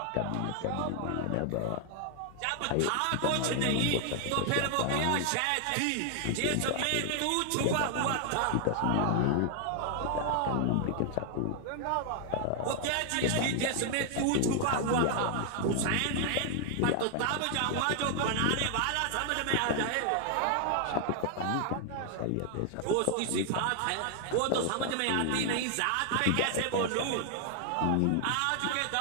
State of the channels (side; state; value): both; different; correlation 0.00